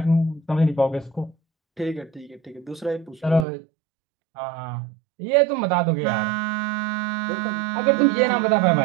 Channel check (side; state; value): left; drops out; at 3.5 s